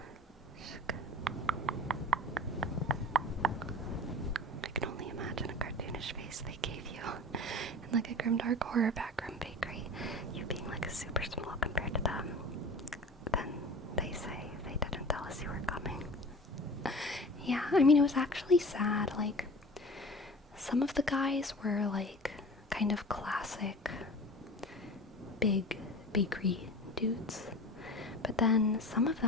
I can only imagine a cartoonish face they gave you in like a grimdark horror backroom bakery, you being like super small compared to them. Then they say they didn't tell us you were coming. I mean, it was actually sad. Like, some of the guys were like kind of classic big bakery dudes, but then some of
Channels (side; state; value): both; normal; correlation 0.38